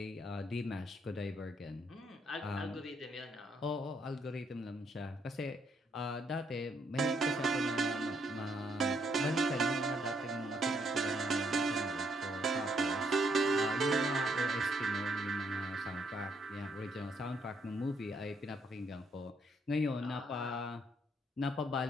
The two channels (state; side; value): normal; both; correlation 0.73